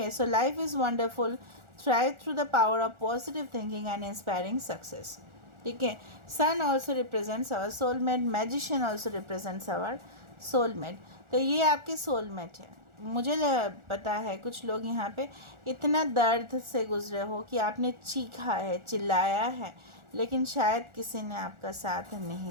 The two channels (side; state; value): left; late; 1.4 ms